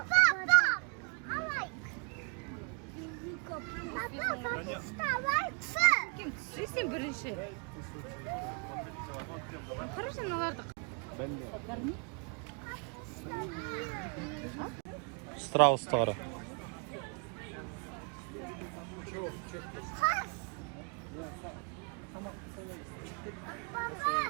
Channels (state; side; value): quieter; left; 37.0 dB